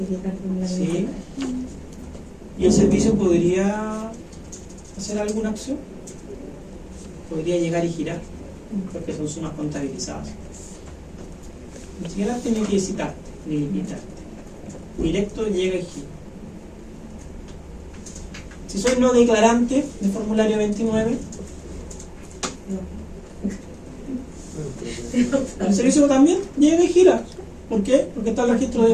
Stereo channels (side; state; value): both; identical; correlation 1.00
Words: el formulario Sí. 29. ¿Y el servicio podría hacer alguna acción? Podría llegar y girar, porque son sumas contabilizadas. Ni siquiera tiene que citarte, ni invitarte. Directo llega y gira. Si soy no declarante de formulario 29, el servicio también llega y gira. ¿Por qué? Porque está el registro